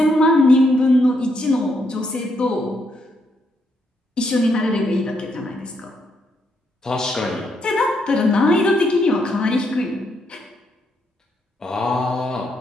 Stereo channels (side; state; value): both; normal; correlation 0.76